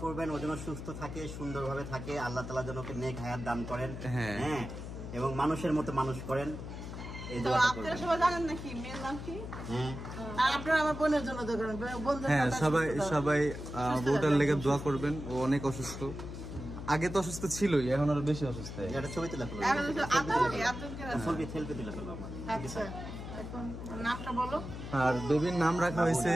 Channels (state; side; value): noise; left; hum, 9 dB below the sound